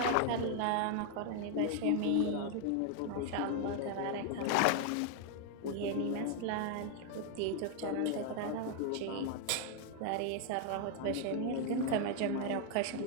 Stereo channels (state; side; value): different; both; correlation 0.00